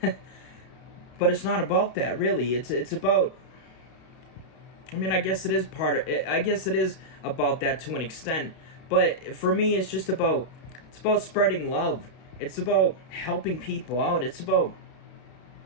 But it's not about that, really. It's about, I guess it is about that to an extent, but for me, it's about spreading love. It's about helping people out. It's about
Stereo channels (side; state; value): right; late; 32 ms